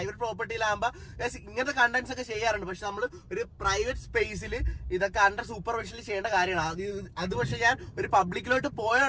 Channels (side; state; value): both; identical; correlation 1.00